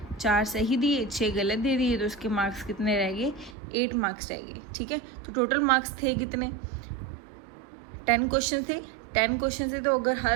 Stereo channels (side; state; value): left; drops out; at 3.6 s